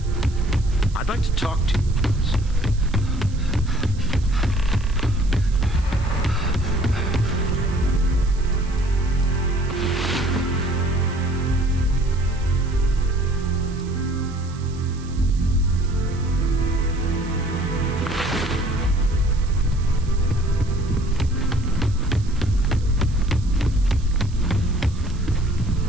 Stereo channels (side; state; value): right; noise; hiss, 23 dB below the sound